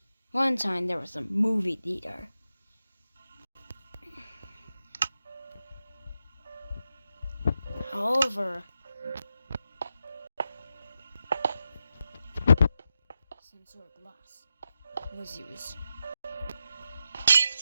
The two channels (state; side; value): inverted; both; correlation -0.88